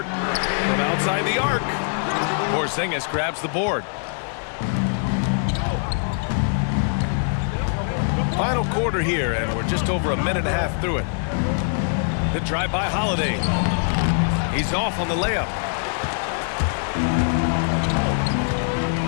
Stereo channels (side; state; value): right; silent; 64 dB below the other